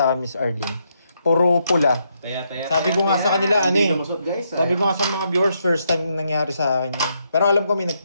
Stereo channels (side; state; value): both; inverted; correlation -0.78